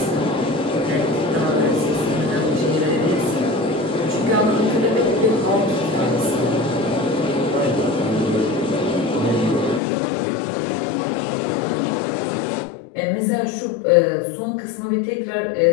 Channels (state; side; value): drops out; right; at 9.8 s